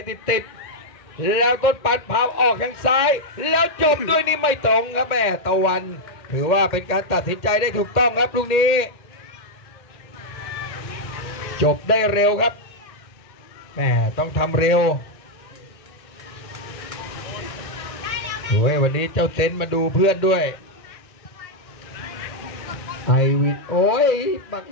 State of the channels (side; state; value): right; late; 1.9 ms